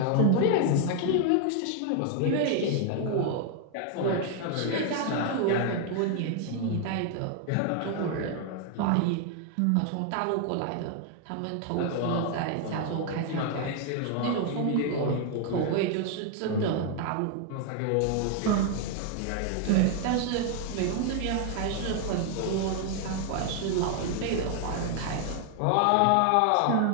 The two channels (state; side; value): different; both; correlation 0.00